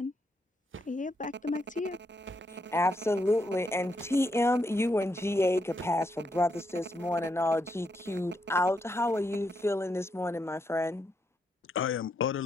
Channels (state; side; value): normal; both; correlation 0.79